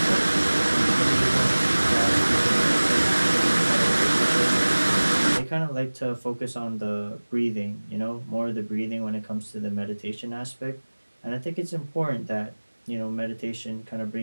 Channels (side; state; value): both; inverted; correlation -1.00